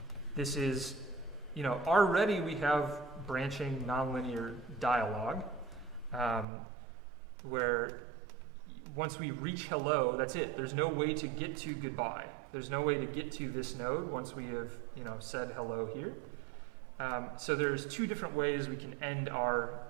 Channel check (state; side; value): drops out; left; at 6.5 s